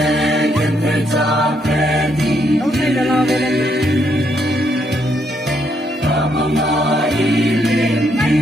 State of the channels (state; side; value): normal; both; correlation 0.74